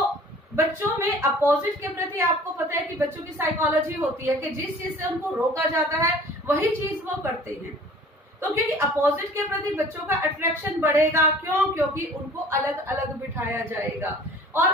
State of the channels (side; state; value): both; normal; correlation 0.48